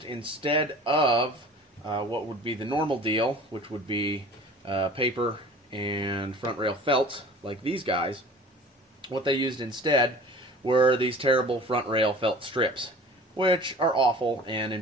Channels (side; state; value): both; normal; correlation 0.43